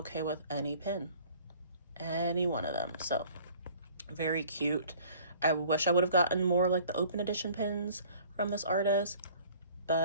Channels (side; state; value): both; inverted; correlation -0.51